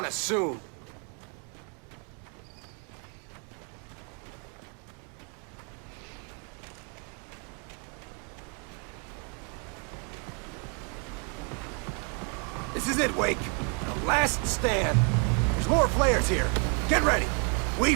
us soon. This is it, Wake. The last stand. There's more flares here. Get ready. We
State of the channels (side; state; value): left; quieter; 37.9 dB